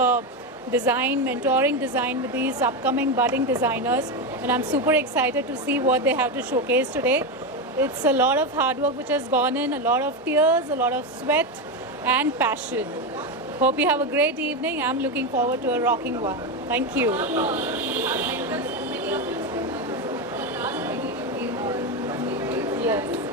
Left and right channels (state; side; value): normal; both; correlation 0.12